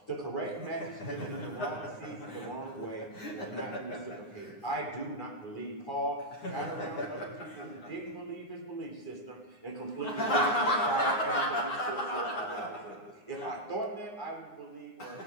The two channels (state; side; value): late; right; 9.7 ms